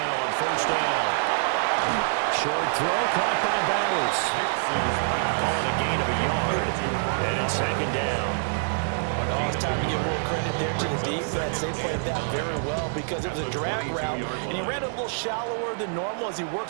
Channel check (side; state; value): left; silent; 61 dB below the other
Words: on first down. Short throw caught by Bowers. Calling a gain of a yard. And it's second down. Oh, it's time to give more credit there to the defense. They played that very well because it was a drag route, and he ran a little shallower than normal as he